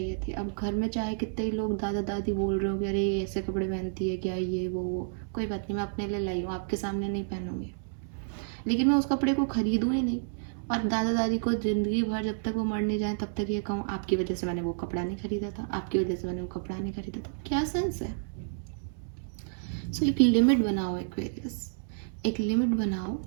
थी। अब घर में चाहे कितने ही लोग दादा दादी बोल रहे हो कि अरे ये ऐसे कपड़े पहनती है क्या, ये वो, कोई बात नहीं, मैं अपने लिए लाई हूँ, आपके सामने नहीं पहनूंगी, लेकिन मैं उस कपड़े को खरीदूँ ही नहीं। और दादा दादी को ज़िंदगी भर जब तक वो मर नहीं जाए तब तक ये कहूँ आपकी वजह से मैंने वो कपड़ा नहीं खरीदा था, आपकी वजह से मैंने वो कपड़ा नहीं खरीदा था, क्या सेंस है? सो एक लिमिट बनाओ एक्वेरियस, एक लिमिट बनाओ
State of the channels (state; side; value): silent; left; 58 dB below the other